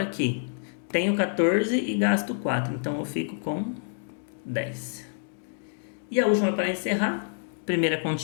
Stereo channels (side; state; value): right; silent; digital silence